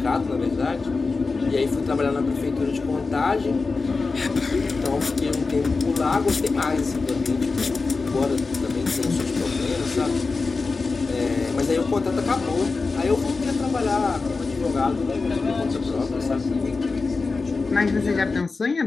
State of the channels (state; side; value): quieter; right; 4.1 dB